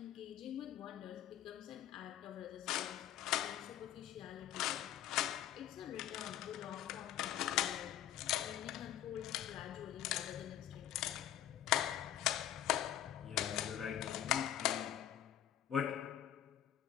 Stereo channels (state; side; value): quieter; right; 11.6 dB